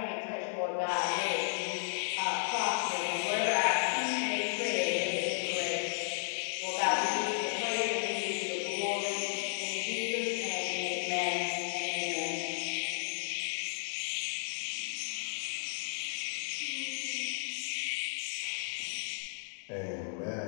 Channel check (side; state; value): right; silent; digital silence